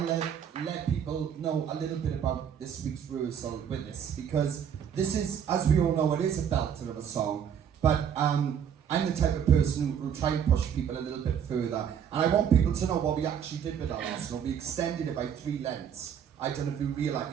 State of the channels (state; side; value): quieter; left; 8.3 dB